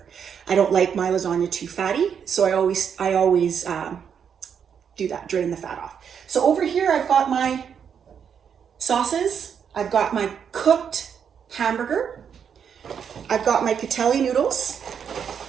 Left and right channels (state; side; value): quieter; left; 7.6 dB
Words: I don't like my lasagna too fatty, so I always do that, drain the fat off. So over here, I've got my sauces. I've got my cooked hamburger. I've got my Catelli noodles.